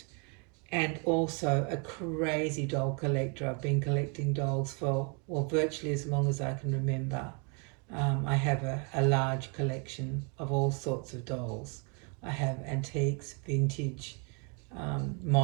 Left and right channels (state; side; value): quieter; left; 36.0 dB